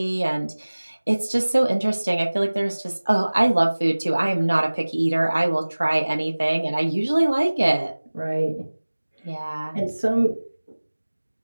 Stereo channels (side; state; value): both; inverted; correlation -1.00